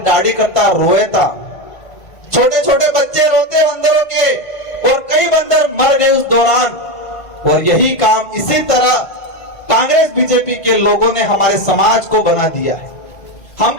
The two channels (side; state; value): right; late; 1.5 ms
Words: दाढ़ी करता रोए था, छोटे छोटे बच्चे रोते बंदरों के, और कई बंदर मर गए उस दौरान। और यही काम इसी तरह कांग्रेस बीजेपी के लोगों ने हमारे समाज को बना दिया है।